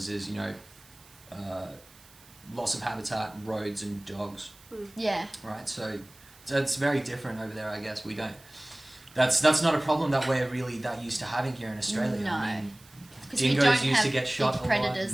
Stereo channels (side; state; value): right; noise; hiss, 25 dB below the sound